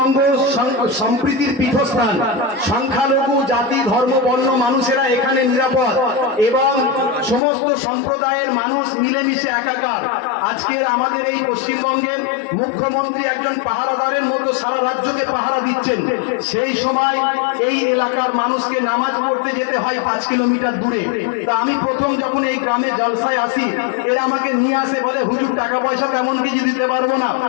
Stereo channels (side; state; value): right; drops out; at 7.4 s